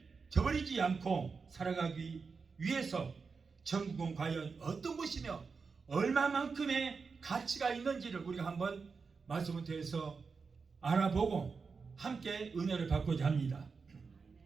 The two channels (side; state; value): left; quieter; 5.0 dB